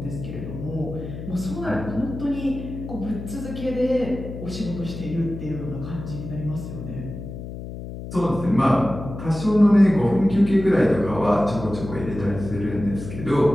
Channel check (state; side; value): noise; left; hum, 9 dB below the sound